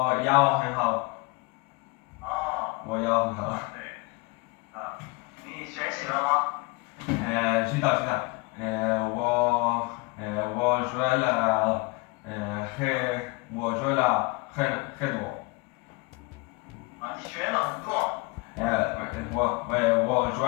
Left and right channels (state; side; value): quieter; right; 25.3 dB